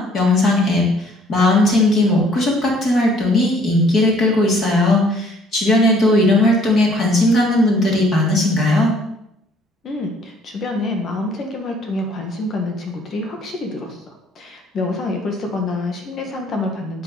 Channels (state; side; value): normal; both; correlation 0.60